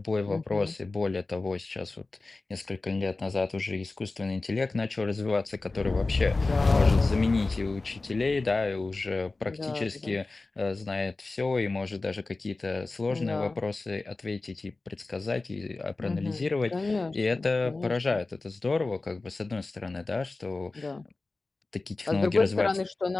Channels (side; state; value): right; quieter; 3.4 dB